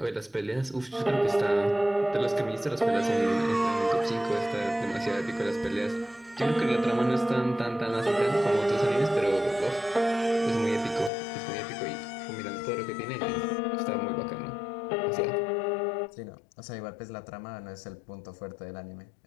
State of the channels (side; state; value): right; drops out; at 11.1 s